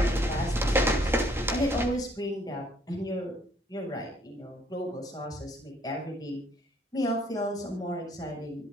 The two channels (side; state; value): both; normal; correlation 0.64